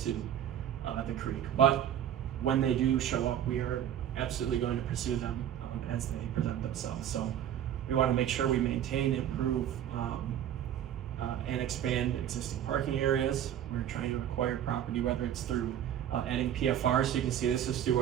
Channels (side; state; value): left; quieter; 10.4 dB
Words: the creek. But when they do show up, we are absolutely going to pursue them as they present themselves. So we want to make sure we maintain, improve, and expand existing parking areas. We're trying to acquire property, whether it's through adding PFR. So you can see this is through